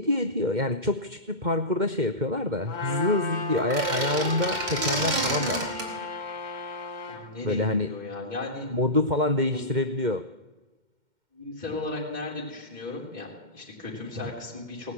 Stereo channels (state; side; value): late; left; 2.1 ms